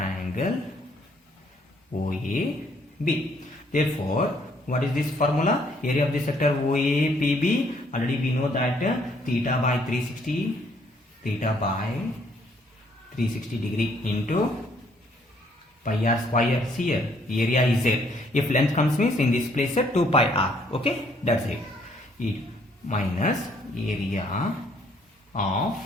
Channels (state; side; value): normal; both; correlation 0.66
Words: Therefore, what is this formula? Area of the sector OAPB. Already we know that theta by 360 degree into pi r square. See here, area is there. If length comes means in this place 2 pi r. Okay, that's it. It minus area of